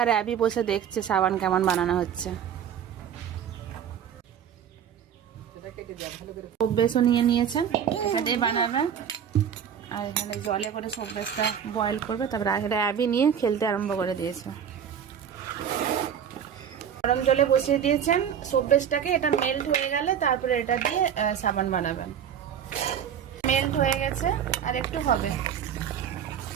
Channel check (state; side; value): quieter; left; 8.5 dB